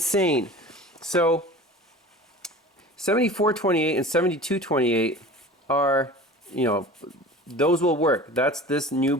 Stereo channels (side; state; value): both; normal; correlation 0.38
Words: So 7428 and 7228 are, you know, those will work. That's this new